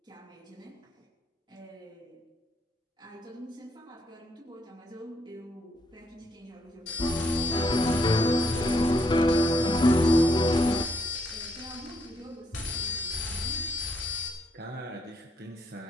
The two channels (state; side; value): normal; both; correlation 0.73